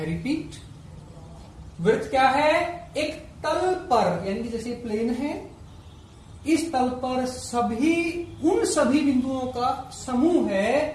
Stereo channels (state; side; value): identical; both; correlation 1.00